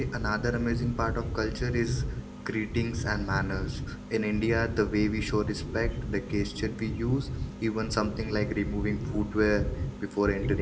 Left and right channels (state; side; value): identical; both; correlation 1.00